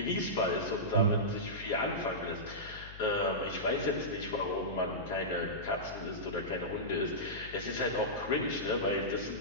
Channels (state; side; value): noise; left; hum, 15 dB below the sound